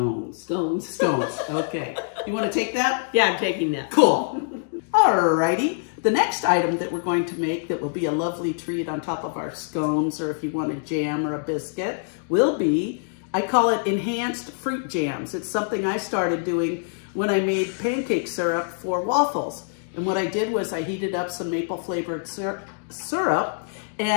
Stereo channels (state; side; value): silent; right; digital silence